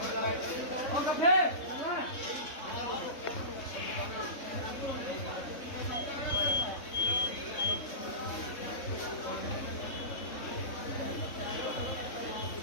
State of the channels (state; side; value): late; right; 3.6 ms